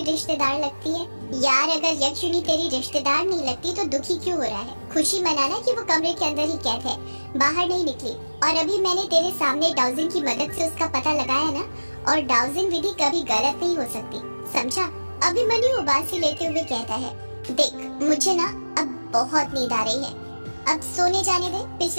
रिश्तेदार लगती है? यार अगर यक्षिणी तेरी रिश्तेदार नहीं लगती तो दुखी क्यों हो रहा है? खुशी मनाना कि वो कमरे के अंदर ही कैद है, बाहर नहीं निकली। और अभी मैंने तेरे सामने डाउजिंग की मदद से उसका पता लगाया ना, और डाउजिंग विधि कभी गलत नहीं हो सकती, समझा? अभिमन्यु उबासी लेते हुए कहता है, देख मुझे ना अब बहुत नींद आ रही है, अब सोने जाने दे।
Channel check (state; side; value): inverted; both; correlation -1.00